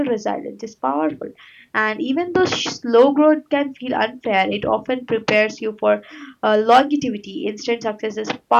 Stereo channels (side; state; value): both; identical; correlation 1.00